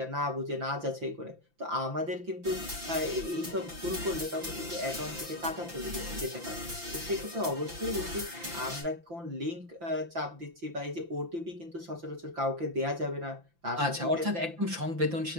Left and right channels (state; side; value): late; left; 5.9 ms